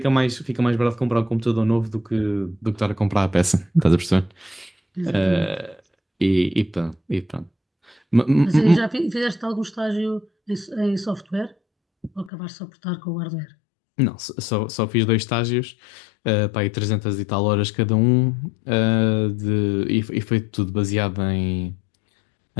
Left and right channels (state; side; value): drops out; right; at 12.3 s